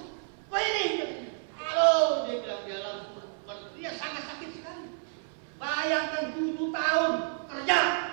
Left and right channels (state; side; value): silent; left; 58 dB below the other